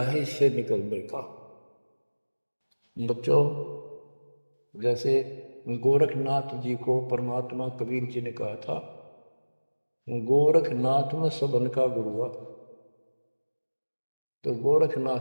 है इससे निकलने का। बच्चों, जैसे गोरखनाथ जी को परमात्मा कबीर जी ने कहा था, गोरखनाथ में सबन का गुरु हुआ, तो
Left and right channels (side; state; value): both; inverted; correlation -1.00